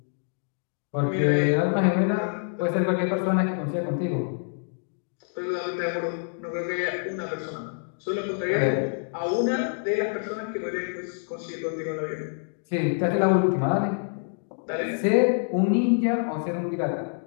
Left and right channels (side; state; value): right; silent; digital silence